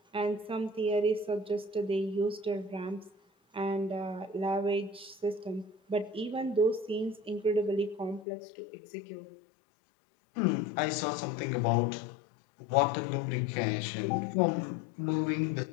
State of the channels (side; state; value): right; drops out; at 8.2 s